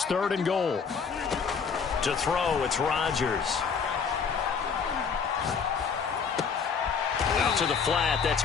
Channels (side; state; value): right; quieter; 6.0 dB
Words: 3rd and goal. To throw, it's Rodgers. Out to the flat. That's